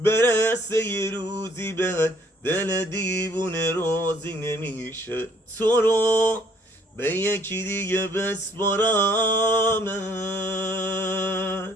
برسه یه روزی بهت دل دیوونه راضی نمیشه تو رو به یکی دیگه بسپارمت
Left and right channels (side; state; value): both; normal; correlation 0.62